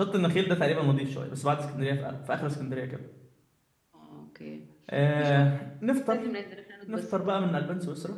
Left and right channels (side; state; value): both; identical; correlation 1.00